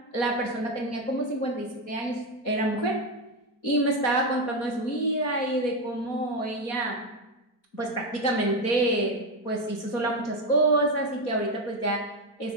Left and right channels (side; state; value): right; late; 4.2 ms